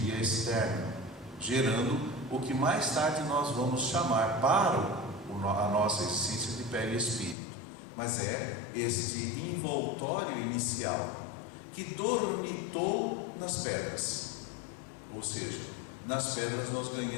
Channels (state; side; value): drops out; right; at 7.4 s